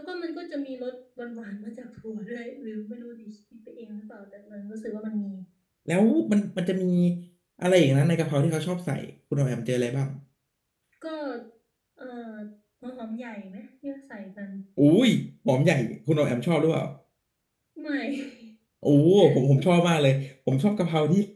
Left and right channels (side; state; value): both; identical; correlation 1.00